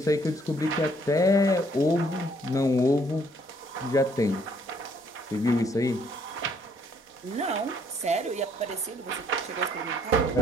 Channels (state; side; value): normal; both; correlation 0.65